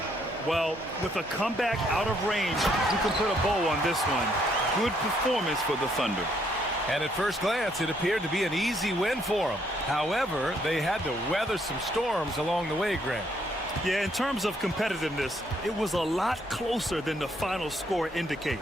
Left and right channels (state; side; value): normal; both; correlation 0.70